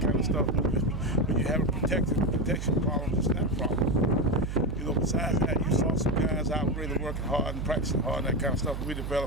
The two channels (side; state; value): right; noise; hum, 5 dB below the sound